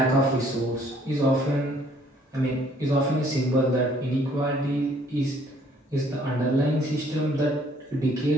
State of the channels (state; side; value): normal; both; correlation 0.61